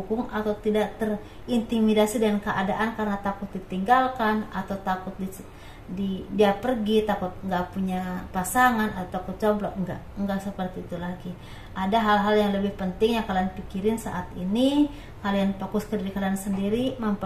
atau tidak terintimidasi dengan keadaan karena takut ditinggalkan atau takut dia pergi, takut nggak punya pasangan atau takut jomblo. Enggak seperti itu lagi. Ada hal-hal yang lebih penting yang kalian pikirin saat ini. Kalian fokus ke diri kalian sendiri,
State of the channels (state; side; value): identical; both; correlation 1.00